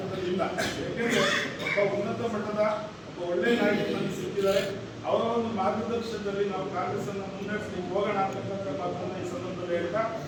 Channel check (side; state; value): both; identical; correlation 1.00